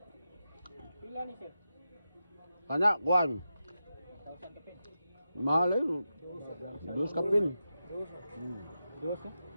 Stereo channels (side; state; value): both; inverted; correlation -0.90